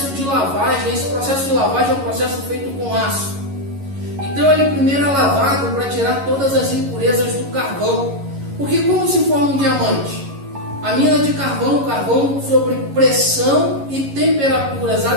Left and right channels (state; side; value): late; left; 11 ms